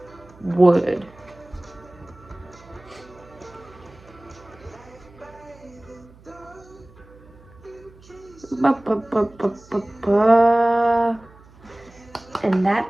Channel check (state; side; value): noise; right; hum, 24 dB below the sound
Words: Wood. And that